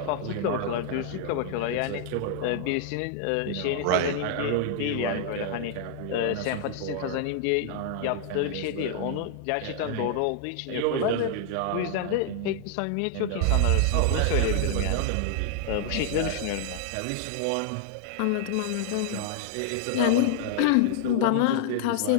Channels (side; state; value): both; different; correlation -0.01